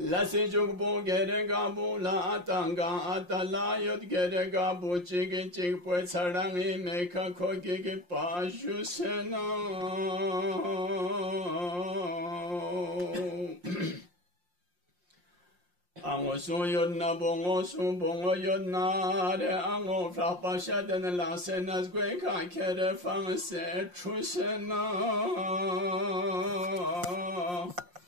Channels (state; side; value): late; left; 5.6 ms